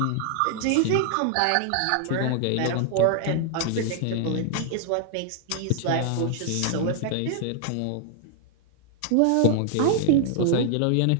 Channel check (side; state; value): both; different; correlation 0.00